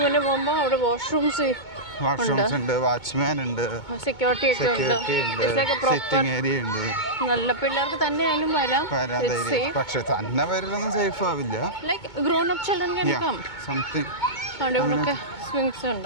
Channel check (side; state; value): right; late; 2.2 ms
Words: മുന്നേ പോകുമ്പോൾ അവിടെ വാഷ്റൂംസ് ഉണ്ട്, വാച്ച്മാൻ ഉണ്ട്, സെക്യൂരിറ്റി ഒക്കെ ഉണ്ട്. സിറ്റിംഗ് ഏരിയ ഉണ്ട്. നല്ല പിള്ളേർക്ക് തന്നെ ആയാലും വരാം. പക്ഷെ തന്നെ വരലൊന്നും സേഫ് ആവില്ല. Like grown up children can come. Something അവിടെ ഇവിടെയൊക്കെ സ്വിങ്സ്